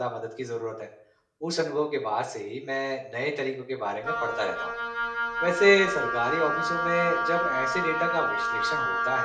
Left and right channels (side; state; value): both; identical; correlation 1.00